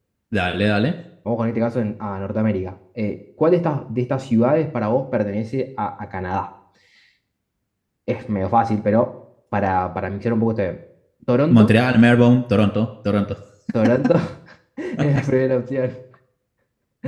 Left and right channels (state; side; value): identical; both; correlation 1.00